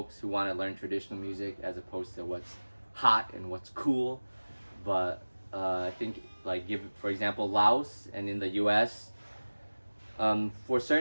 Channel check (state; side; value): inverted; both; correlation -1.00